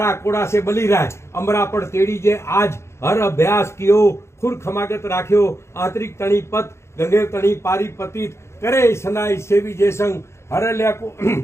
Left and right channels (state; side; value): late; right; 0.13 ms